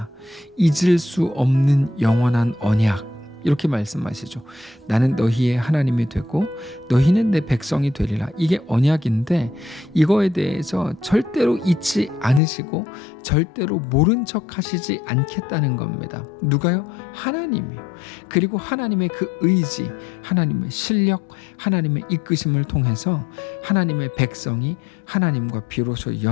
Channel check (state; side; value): drops out; right; at 12.4 s